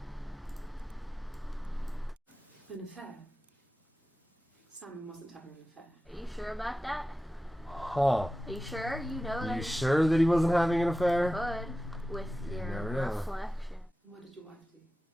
An affair. Simon wasn't having an affair. Are you sure about that? Huh. Are you sure? You know that You sure that he wasn't having an affair? could with You your never know. reflection. What did your wife do?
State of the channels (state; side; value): normal; both; correlation 0.95